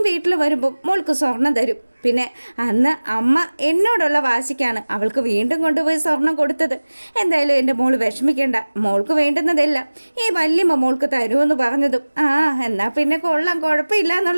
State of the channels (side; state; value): both; inverted; correlation -1.00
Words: വീട്ടിൽ വരുമ്പം മോൾക്ക് സ്വർണം തരും. പിന്നെ അന്ന് അമ്മ എന്നോടുള്ള വാശിക്കാണ് അവൾക്ക് വീണ്ടും കൊണ്ടുപോയി സ്വർണം കൊടുത്തത്. എന്തായാലും എൻ്റെ മോള് വിഷമിക്കേണ്ട. മോൾക്ക് വേണ്ടുന്നതെല്ലാം ഈ വല്യമ്മ മോൾക്ക് തരുമെന്ന് പറഞ്ഞതും എന്നാൽ പിന്നെ കൊള്ളാം, കുഴപ്പമില്ല